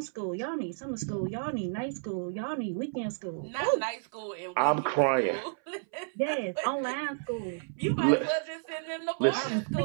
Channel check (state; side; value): silent; left; 57 dB below the other